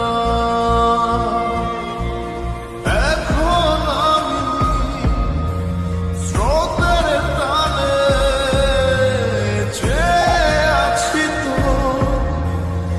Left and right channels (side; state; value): both; identical; correlation 1.00